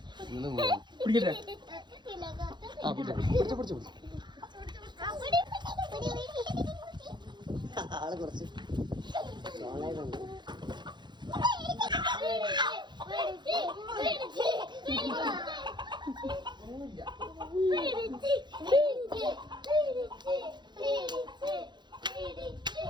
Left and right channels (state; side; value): late; left; 0.21 ms